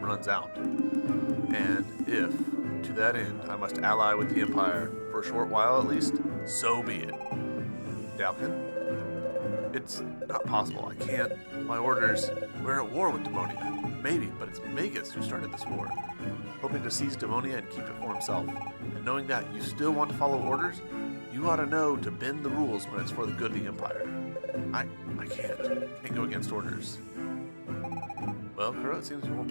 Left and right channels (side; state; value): both; inverted; correlation -1.00